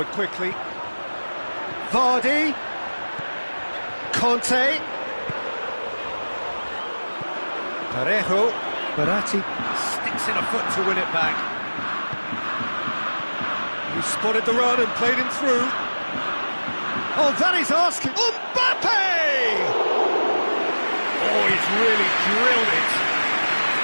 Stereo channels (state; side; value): inverted; both; correlation -1.00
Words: quickly. Vardy. Conte. Parejo. Verratti sticks in a foot to win it back. He spotted the run and played him through. Oh, that is asking. Mbappe! Oh, he's really drilled it.